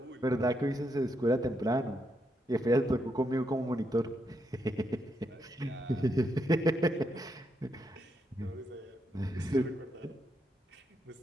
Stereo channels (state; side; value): normal; both; correlation 0.80